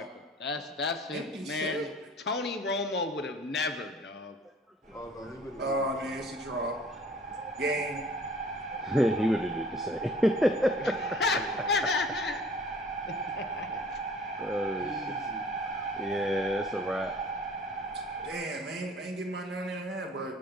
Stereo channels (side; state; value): both; normal; correlation 0.51